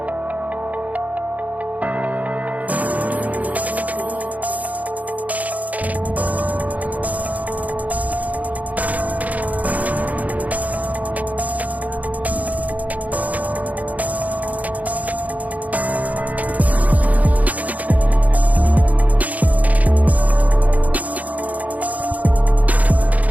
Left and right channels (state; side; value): late; left; 0.074 ms